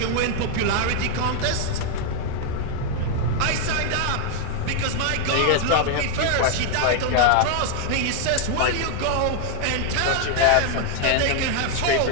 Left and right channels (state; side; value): different; both; correlation 0.00